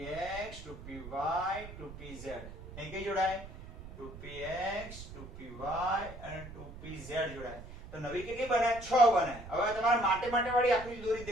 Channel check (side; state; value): right; noise; rumble, 13 dB below the sound